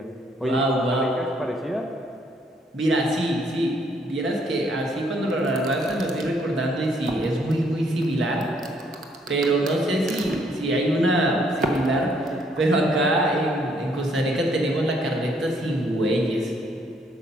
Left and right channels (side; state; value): both; normal; correlation 0.68